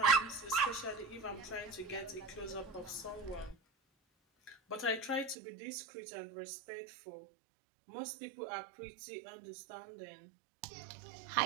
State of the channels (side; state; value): left; drops out; at 5.4 s